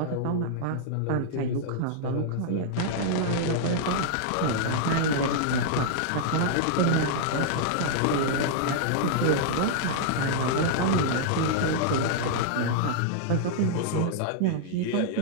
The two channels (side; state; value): both; different; correlation -0.01